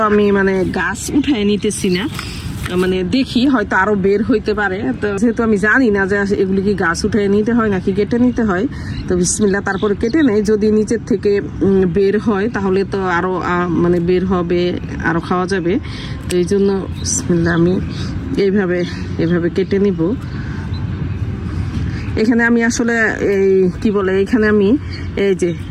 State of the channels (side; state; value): both; identical; correlation 1.00